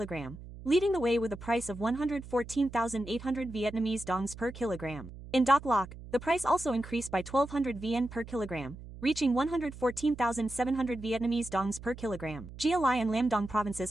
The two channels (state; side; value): noise; right; hum, 14 dB below the sound